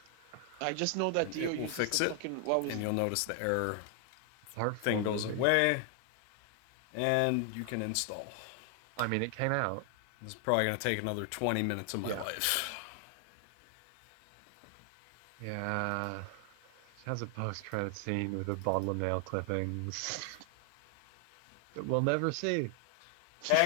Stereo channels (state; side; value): different; both; correlation 0.00